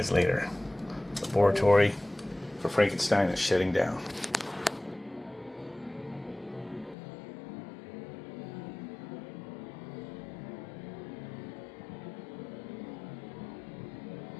later. Laboratory for Frankenstein is shutting down.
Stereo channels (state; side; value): drops out; right; at 7.0 s